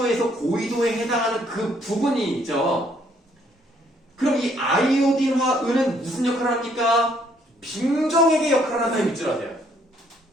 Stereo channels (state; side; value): normal; both; correlation 0.67